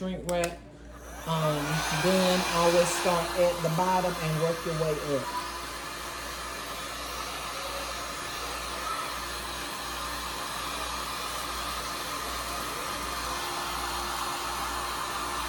wrap, then always start at the bottom and work your way up.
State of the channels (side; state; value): both; identical; correlation 1.00